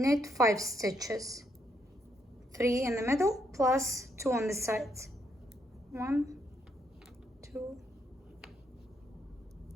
5 stitches, 3 in the middle plus 2 on the sides. 1, 2,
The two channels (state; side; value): normal; both; correlation 0.75